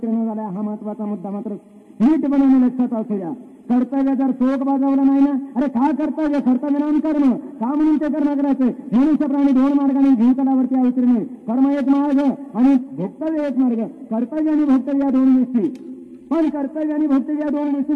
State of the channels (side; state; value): both; identical; correlation 1.00